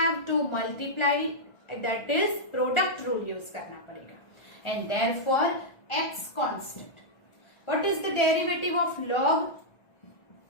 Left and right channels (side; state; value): right; late; 1.6 ms